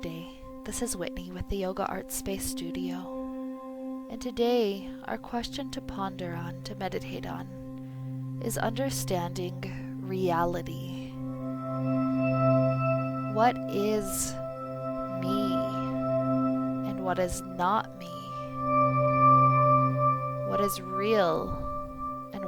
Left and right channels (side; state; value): both; identical; correlation 1.00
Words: This is Whitney with the Yoga Art Space Studio. And today, our question to ponder on, to meditate on, is understanding reality. What is me and what is not me? What is real and